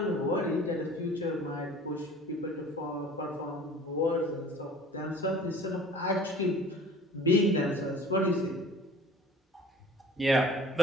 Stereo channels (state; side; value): normal; both; correlation 0.45